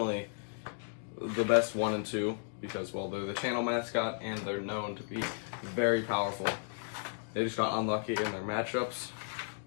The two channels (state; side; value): silent; right; digital silence